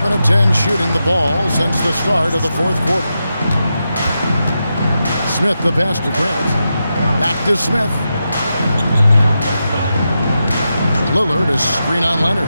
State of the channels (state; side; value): inverted; both; correlation -0.88